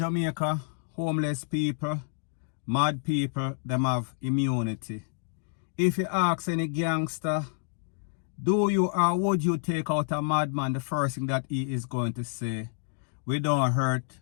homeless people, mad people, them have immunity. If you ask any gangster, do you or would you take out a madman, the first thing that he is going to say, we don't hurt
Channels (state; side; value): silent; right; digital silence